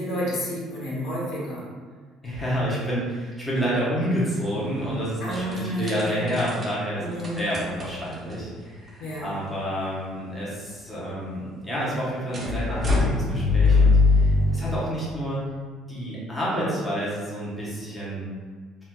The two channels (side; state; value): both; normal; correlation 0.61